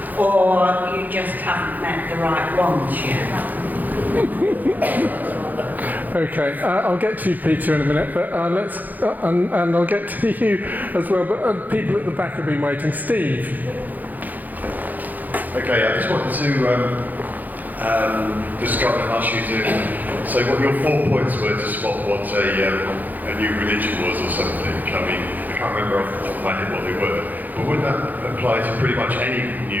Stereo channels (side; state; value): left; late; 0.083 ms